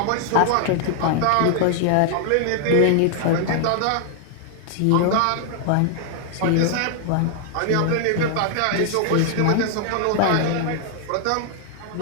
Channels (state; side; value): different; both; correlation 0.00